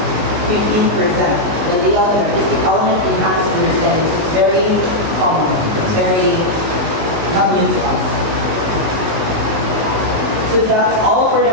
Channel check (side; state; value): left; late; 19 ms